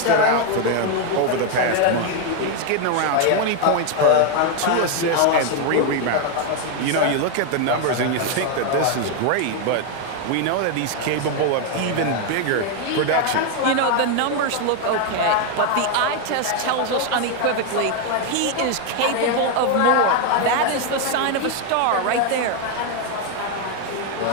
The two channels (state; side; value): different; both; correlation 0.01